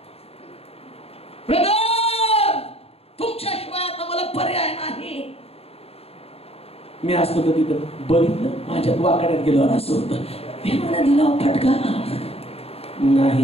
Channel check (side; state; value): right; late; 0.29 ms